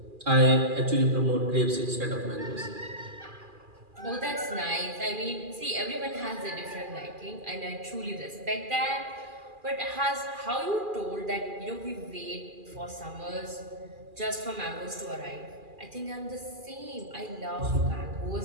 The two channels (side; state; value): left; late; 2.4 ms